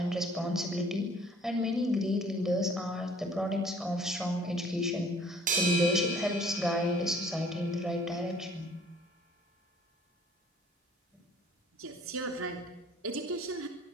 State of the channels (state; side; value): normal; both; correlation 0.55